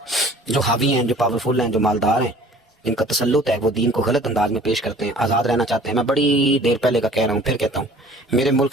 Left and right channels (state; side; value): normal; both; correlation 0.49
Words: جو حاوی ہیں, جو پاورفل ہیں, جو مالدار ہیں, جن کا تسلط ہے, وہ دین کو غلط انداز میں پیش کرتے ہیں, آزاد رہنا چاہتے ہیں. میں بڑی دیر پہلے کا کہہ رہا ہوں, پھر کہتا ہوں, میرے